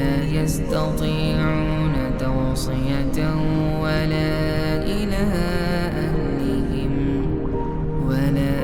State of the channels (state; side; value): identical; both; correlation 1.00